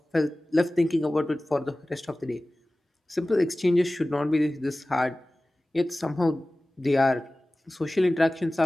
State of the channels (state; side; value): normal; both; correlation 0.97